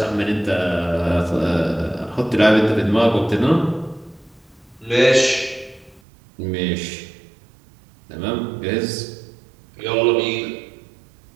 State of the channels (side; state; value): left; drops out; at 6.0 s